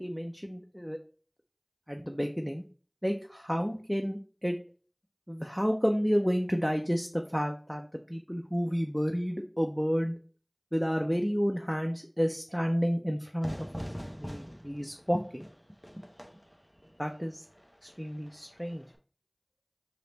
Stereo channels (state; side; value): identical; both; correlation 1.00